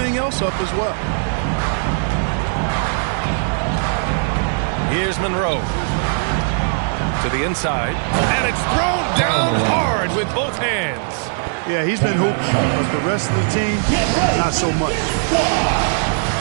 else up as well. Here's Monroe. To the inside. And it's thrown down hard with both hands. Yeah, he's been hooping, but the rest of the team, not so much.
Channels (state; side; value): silent; left; 66 dB below the other